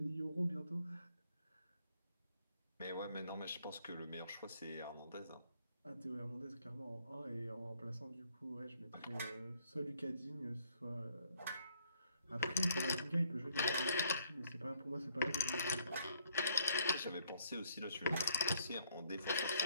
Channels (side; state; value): both; inverted; correlation -0.69